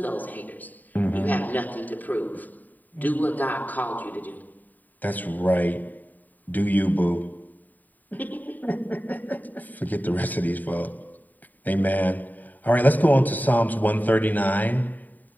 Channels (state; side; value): late; right; 0.085 ms